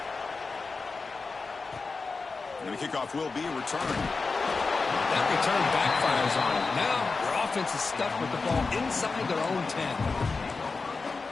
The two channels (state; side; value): quieter; right; 4.2 dB